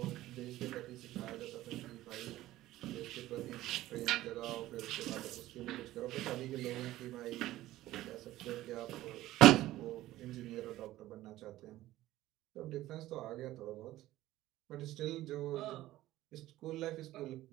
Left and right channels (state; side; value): quieter; left; 15.6 dB